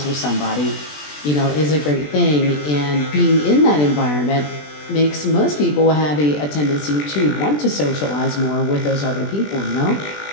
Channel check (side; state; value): right; late; 20 ms